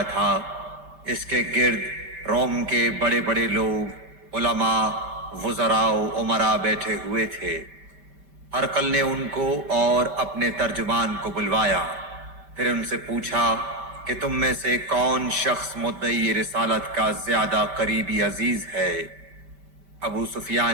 تھا، اس کے گرد روم کے بڑے بڑے لوگ، علماء، وزراء و امراء بیٹھے ہوئے تھے۔ ہرقل نے ان کو اور اپنے ترجمان کو بلوایا، پھر ان سے پوچھا کہ تم میں سے کون شخص مدعی رسالت کا زیادہ قریبی عزیز ہے؟ ابو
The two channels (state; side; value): late; left; 5.1 ms